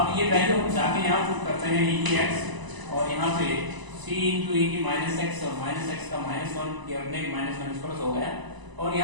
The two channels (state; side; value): late; left; 1.0 ms